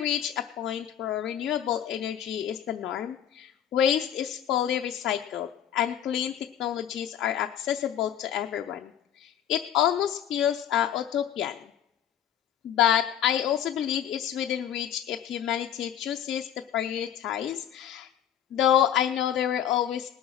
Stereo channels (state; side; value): quieter; right; 10.1 dB